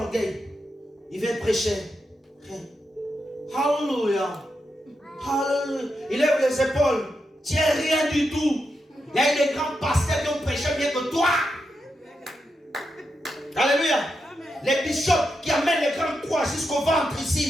orgueil. Ils viennent prêcher. Alléluia. Il lève les épaules. Tu n'es rien du tout. Il y a eu des grands pasteurs qui ont prêché mieux que toi. Alléluia. Les bishops qui amènent les grandes croix jusqu'au ventre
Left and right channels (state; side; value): normal; both; correlation 0.85